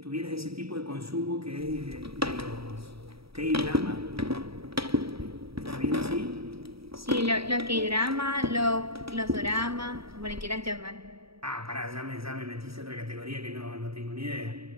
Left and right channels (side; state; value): left; late; 0.76 ms